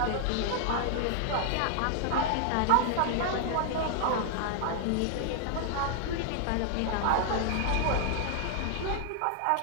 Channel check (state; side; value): different; both; correlation -0.01